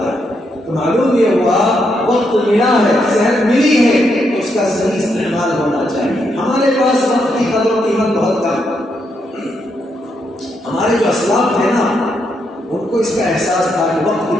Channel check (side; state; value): both; normal; correlation 0.79